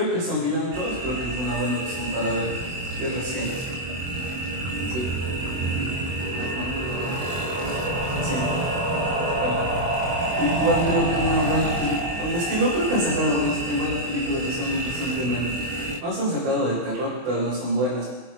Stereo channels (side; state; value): left; late; 24 ms